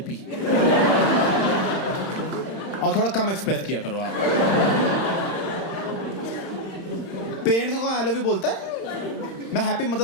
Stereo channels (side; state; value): right; late; 31 ms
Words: और थोड़ा कम एक्सप्रेस किया करो आप। पेरेंट्स को आई लव यू बोलता है? मैं हैप्पी